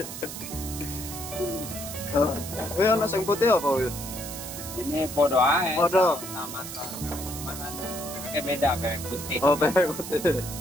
Ini ada yang putih apa? Wih? Ini podo aja. Podo. Sama cuman bebeknya beda, bebek putih. Oh, bebek putih.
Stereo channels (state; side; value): noise; right; hiss, 9 dB below the sound